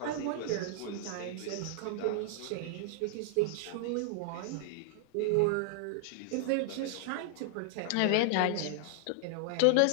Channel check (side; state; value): both; different; correlation -0.01